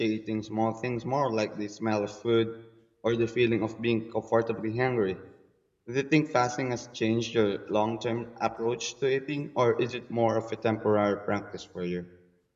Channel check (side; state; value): both; identical; correlation 1.00